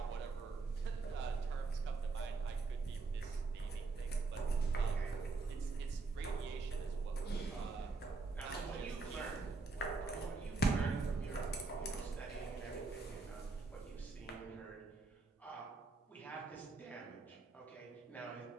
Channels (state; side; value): quieter; left; 3.8 dB